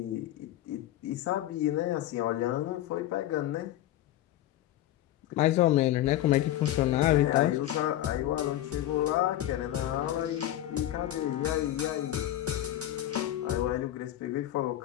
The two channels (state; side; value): quieter; right; 13.5 dB